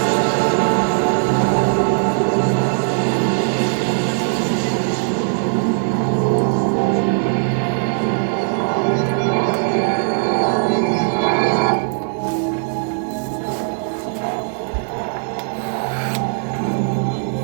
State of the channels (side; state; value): left; silent; digital silence